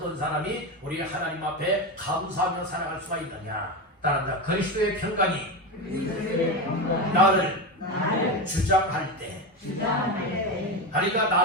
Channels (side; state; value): both; normal; correlation 0.17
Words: 사람이 우리 하나님 앞에 감사하며 살아갈 수가 있느냐? 따라합니다. 그리스도의 평강이 나를 주장할 때, 그러니까